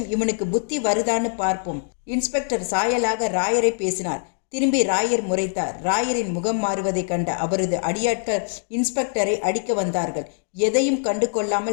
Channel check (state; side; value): silent; right; digital silence